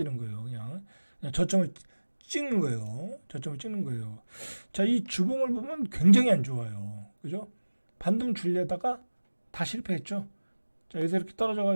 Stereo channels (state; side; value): inverted; both; correlation -1.00